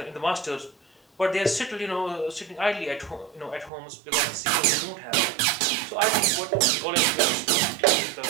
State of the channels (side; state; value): left; drops out; at 3.7 s